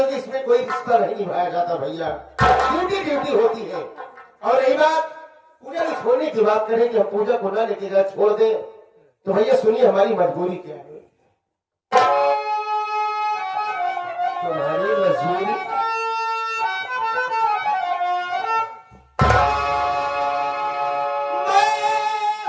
कि इसमें कोई रिश्ता नहीं निभाया जाता भैया, ड्यूटी ड्यूटी होती है। और रही बात पूजा को छोड़ने की बात करें कि हम पूजा को ना लेके जाए छोड़ दें, तो भैया सुनिए हमारी मजबूरी क्या है। तुम्हारी मजबूरी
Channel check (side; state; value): both; identical; correlation 1.00